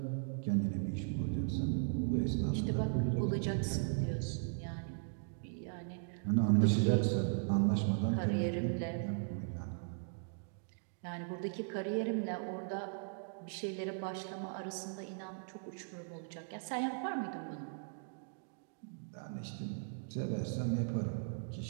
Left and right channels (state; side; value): silent; left; digital silence